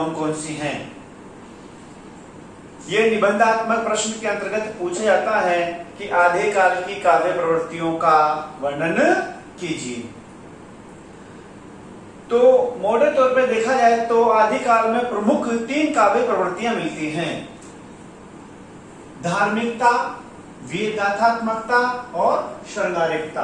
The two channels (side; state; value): both; identical; correlation 1.00